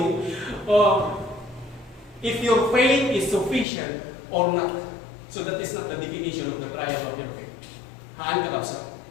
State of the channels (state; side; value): drops out; right; at 3.7 s